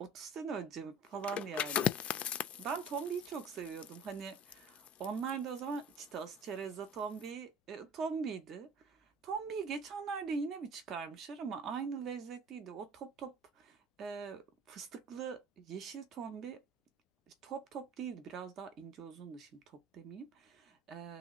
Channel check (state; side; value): normal; both; correlation 0.46